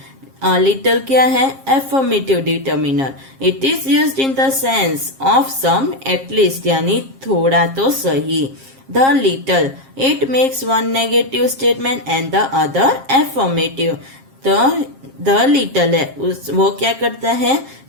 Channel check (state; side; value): late; left; 7.5 ms